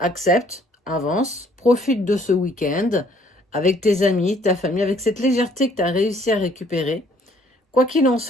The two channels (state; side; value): normal; both; correlation 0.62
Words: accepte, avance, profite de ce week-end avec tes amis, ta famille, avec cette légèreté que tu as réussi à récupérer. Quoi qu'il en